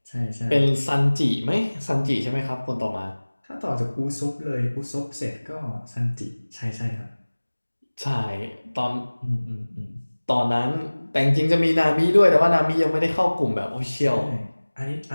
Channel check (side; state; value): both; inverted; correlation -1.00